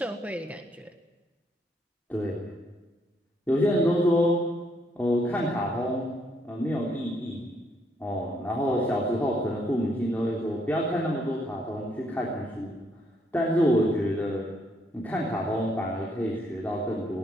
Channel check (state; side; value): normal; both; correlation 0.72